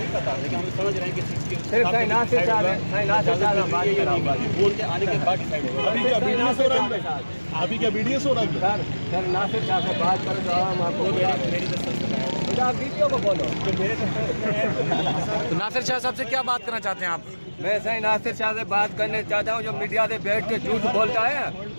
पता, लेकिन हम समझ रहे हैं कि बोल के आने के बाद डिसाइड होगा। अभी क्या बीडीएस हो रहा है? अभी क्या बीडीएस हो रहा है? सर नासिर साहब से बात करो तो हम आपको मेरी आप वीडियो को बोलो तो नासिर शाह साहब से क्या बात करना चाहते हैं आप? मैं सही नासिर शाह से बात करने चाहता हूँ, जो मीडिया से बैठ के झूठ बोलता है,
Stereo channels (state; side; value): inverted; both; correlation -1.00